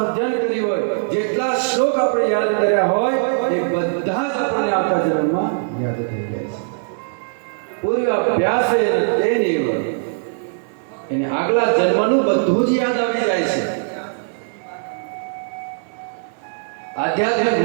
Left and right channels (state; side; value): silent; left; 59 dB below the other